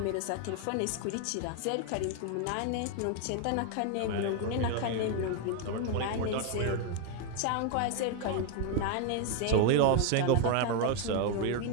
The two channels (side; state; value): both; different; correlation 0.01